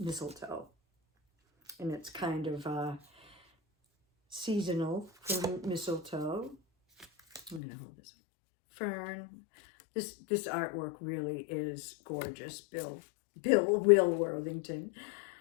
And it's kind of seasonal for mistletoe. I'm going to hold this. Fern. This artwork really is gorgeous. Will Worthington.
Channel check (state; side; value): drops out; right; at 7.6 s